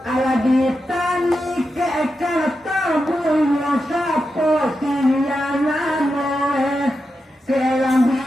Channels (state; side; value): normal; both; correlation 0.88